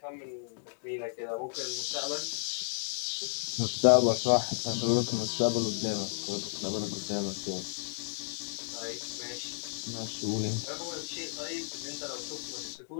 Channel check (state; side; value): silent; right; digital silence